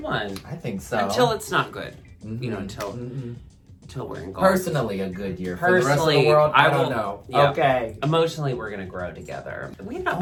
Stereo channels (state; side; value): identical; both; correlation 1.00